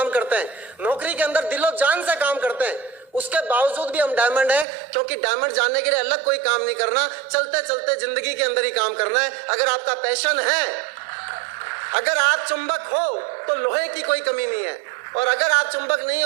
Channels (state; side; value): drops out; left; at 4.7 s